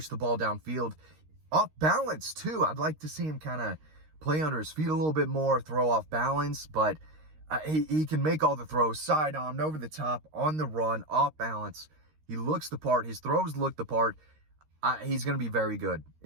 the ball downfield. Off balance, too. I'd like to see him kind of play under his feet a little bit more, throw off balance, but he can make all the throws. Side-armed, over the top, on the run, off balance. He looks the part. His throws look the part. He's going to be very good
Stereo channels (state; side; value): late; left; 13 ms